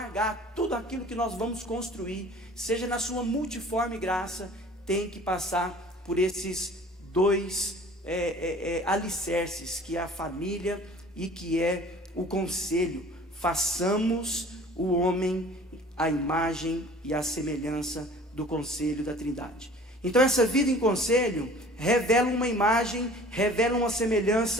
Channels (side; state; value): both; normal; correlation 0.47